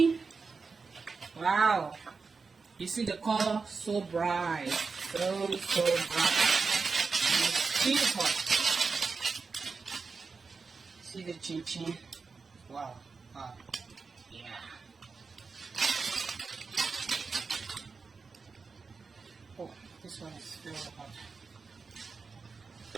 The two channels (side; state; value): left; quieter; 4.7 dB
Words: Wow, you see the color, so bright, so bright. It's beautiful. See the chin chin. Wow. Yeah. Oh, this one is still hot.